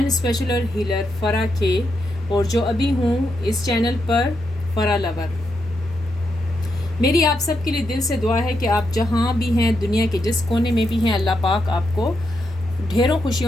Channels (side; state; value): both; normal; correlation 0.83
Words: special healer फरा के और जो अभी हूँ इस channel पर फरा lover. मेरी आप सब के लिए दिल से दुआ है कि आप जहाँ भी हैं, दुनिया के जिस कोने में भी हैं, अल्लाह पाक आपको ढेरों